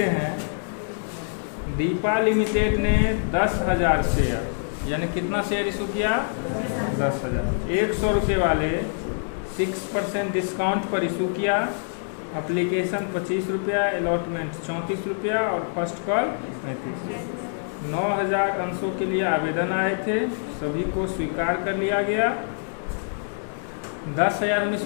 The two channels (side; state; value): right; silent; digital silence